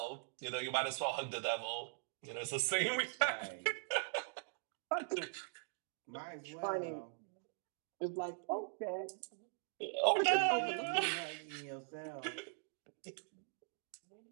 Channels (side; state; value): left; silent; digital silence